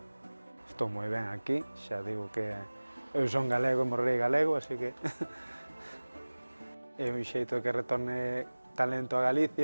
Estou moi ben aquí, xa digo que eu son galego e morrei galego, así que é un xeito de que retorne talento a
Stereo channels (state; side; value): inverted; both; correlation -1.00